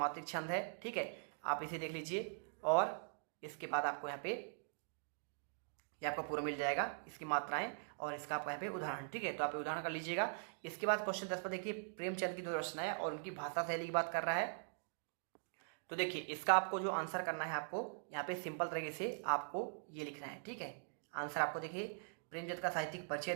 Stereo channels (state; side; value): silent; left; digital silence